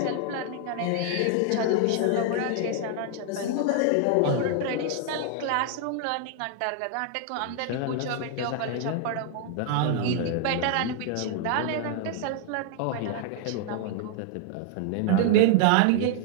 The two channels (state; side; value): different; both; correlation 0.00